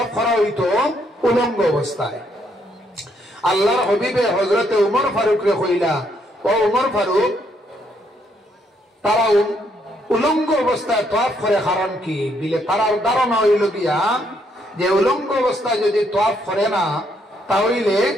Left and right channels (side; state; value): both; normal; correlation 0.73